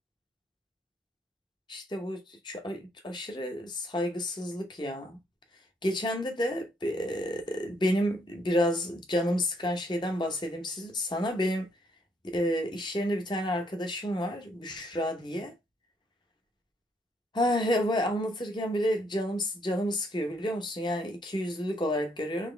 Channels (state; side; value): normal; both; correlation 0.71